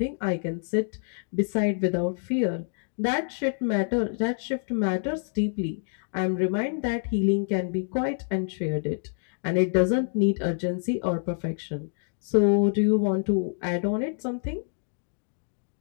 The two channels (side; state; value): right; silent; digital silence